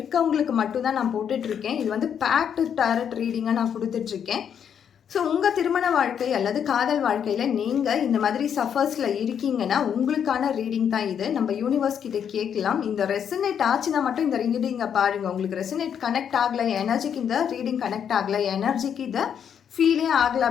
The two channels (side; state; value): right; quieter; 8.2 dB